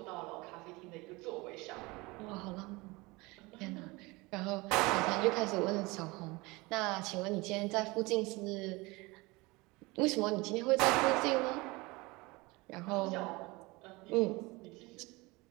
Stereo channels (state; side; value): quieter; left; 23.6 dB